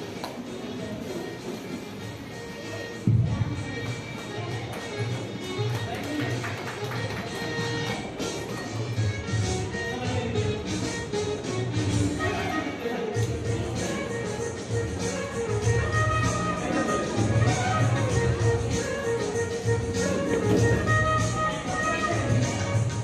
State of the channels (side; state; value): both; identical; correlation 1.00